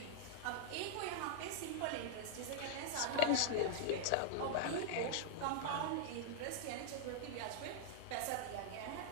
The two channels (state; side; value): different; both; correlation -0.01